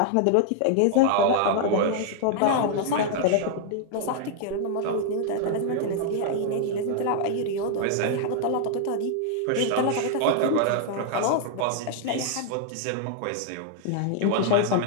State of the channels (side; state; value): both; different; correlation 0.00